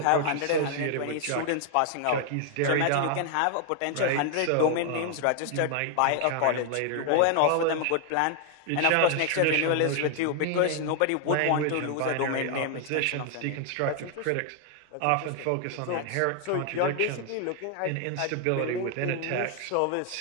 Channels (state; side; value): different; both; correlation 0.00